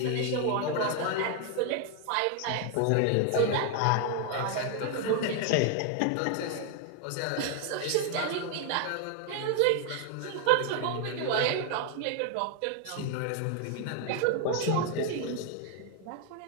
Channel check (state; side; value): different; both; correlation 0.00